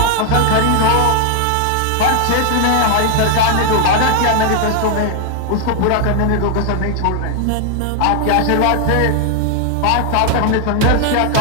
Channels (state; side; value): different; both; correlation 0.00